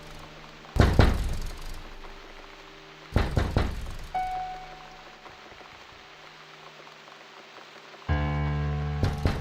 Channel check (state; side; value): identical; both; correlation 1.00